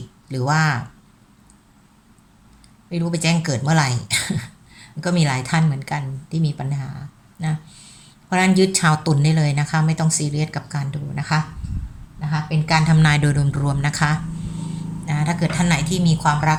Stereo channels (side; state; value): both; identical; correlation 1.00